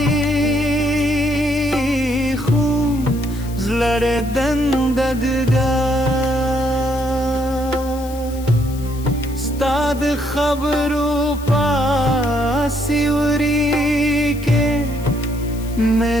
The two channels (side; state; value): left; noise; hiss, 19 dB below the sound